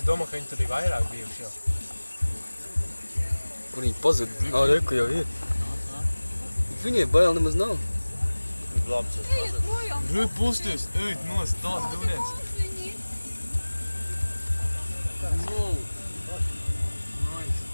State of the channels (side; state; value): both; inverted; correlation -1.00